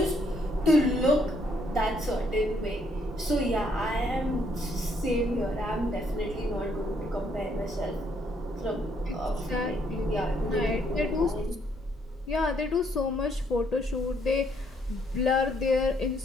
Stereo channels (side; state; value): both; normal; correlation 0.70